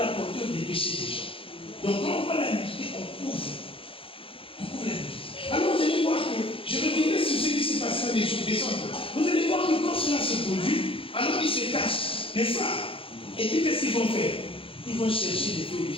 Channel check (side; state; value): right; late; 0.26 ms